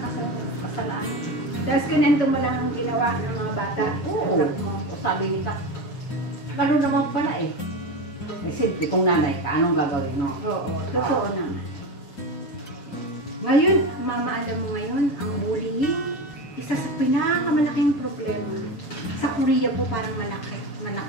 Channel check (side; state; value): right; late; 7.0 ms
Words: kasalaan. Tapos kinento mo lang ang ginawa ng mga bata. Oo. O sabi ni Kap, gano'n naman pala eh. Eh simple, kung nanay ka, anong gagawin, no? Oo, totoo naman. Ngayon, mama, alam mo ngayon, ang bullying, isa sa pinakamalaking problema. Sa Korea po parang malaki.